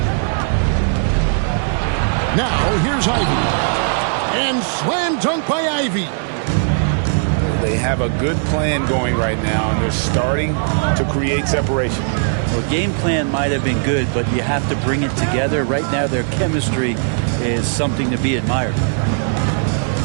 Now, here's Ivy. And slam dunk by Ivy. They have a good plan going right now, and they're starting to create separation. Well, game plan might have been good, but you have to bring it together. Right now, their chemistry is something to be admired.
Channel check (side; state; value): left; silent; 64 dB below the other